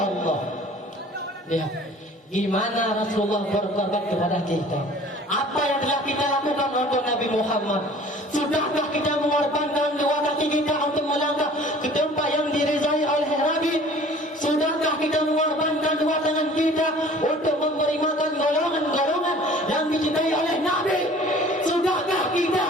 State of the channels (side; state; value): both; normal; correlation 0.48